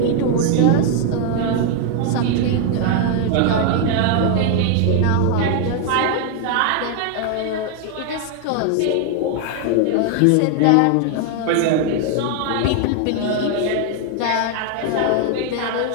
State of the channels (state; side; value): different; both; correlation 0.01